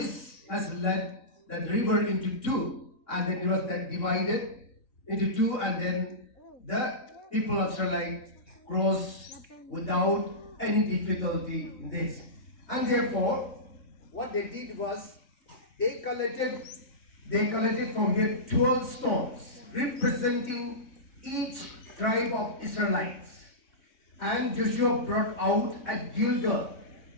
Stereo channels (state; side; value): late; right; 3.5 ms